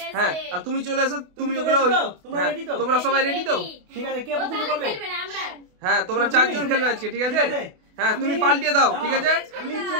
হ্যাঁ, আর তুমি চলে এসো, তুমি ওগুলো, তোমরা সবাই রেডি তো? ঠিক আছে, কে প্রথমে করবে? হ্যাঁ, তোমরা 4 জন খেলবে আজকে, ঠিক আছে? হ্যাঁ, তুমি পাল্টিয়ে দাও, ঠিক আছে? আমি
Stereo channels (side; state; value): left; late; 28 ms